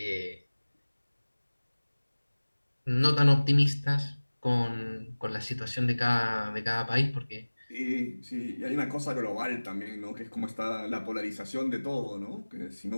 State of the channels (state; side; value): inverted; both; correlation -1.00